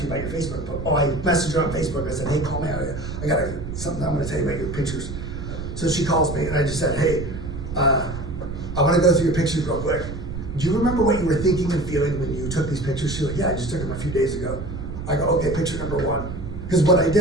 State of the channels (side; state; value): right; noise; rumble, 8 dB below the sound